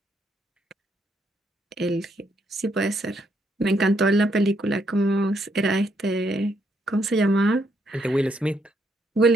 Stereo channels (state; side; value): normal; both; correlation 0.74